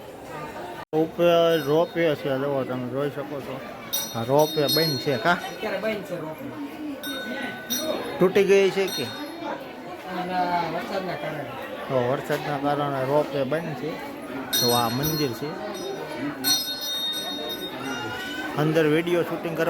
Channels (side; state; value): both; identical; correlation 1.00